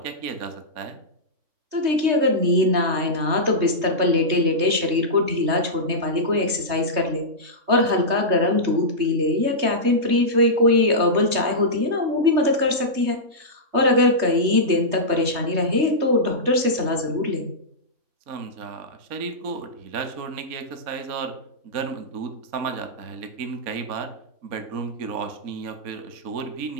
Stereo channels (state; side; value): late; left; 3.3 ms